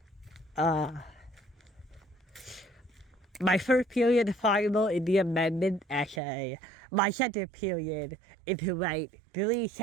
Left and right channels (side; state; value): left; drops out; at 6.2 s